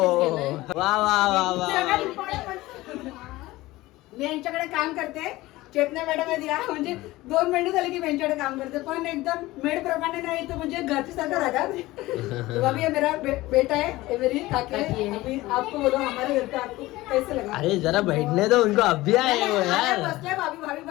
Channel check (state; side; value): quieter; right; 18.5 dB